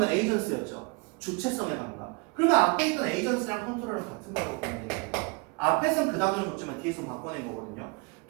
에이전스였죠. 주체성의 감각. 그러면 앞에 있던 에이전스랑 컨트롤은 같은 거라고 보면 돼요. 앞에서는 그 단어를 줬지만 뒤에서 바꿔낸 거거든요.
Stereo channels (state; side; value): quieter; left; 30.7 dB